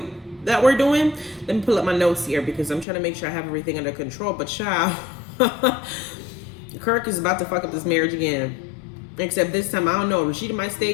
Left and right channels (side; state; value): right; drops out; at 2.9 s